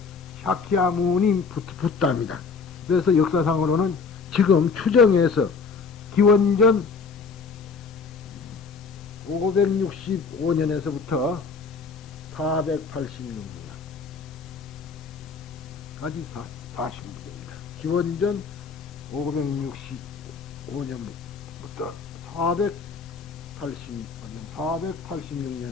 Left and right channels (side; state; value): right; quieter; 5.0 dB